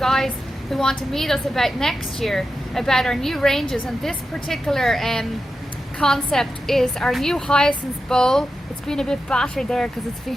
who want to meet us about next year, about our new ranges, and this particular concept is our new hyacinth bowl. It's been a bit battered there because it's been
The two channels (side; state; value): both; normal; correlation 0.90